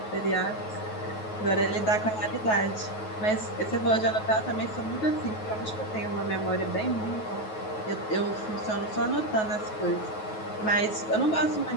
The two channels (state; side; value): late; right; 9.3 ms